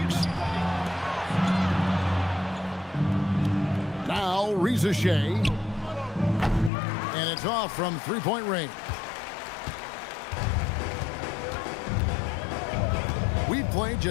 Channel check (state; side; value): drops out; right; at 6.7 s